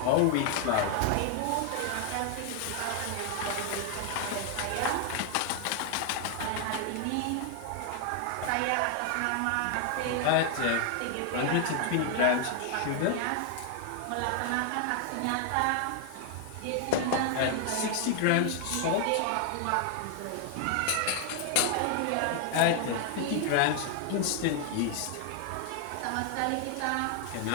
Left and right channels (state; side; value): different; both; correlation 0.00